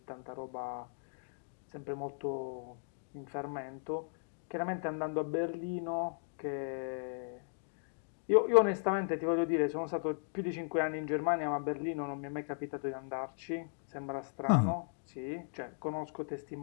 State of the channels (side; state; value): right; silent; digital silence